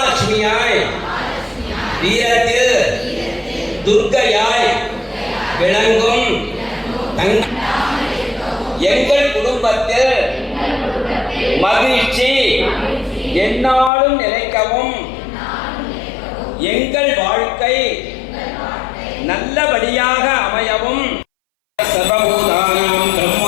வீரத்தில் துர்க்கையாய் விளங்கும் எங்கள் குடும்பத்தில் மகிழ்ச்சி எந்நாளும் நிலைக்கவும் எங்கள் வாழ்க்கை நல்லபடியாக அமையவும் சர்வ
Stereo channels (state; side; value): drops out; right; at 13.9 s